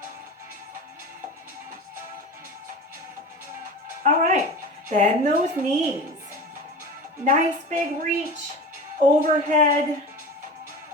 All right, bend those knees. Nice big reach overhead.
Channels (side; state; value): both; normal; correlation 0.32